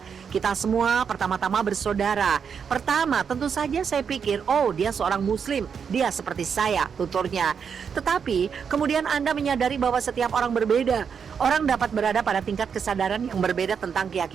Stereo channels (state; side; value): quieter; left; 6.8 dB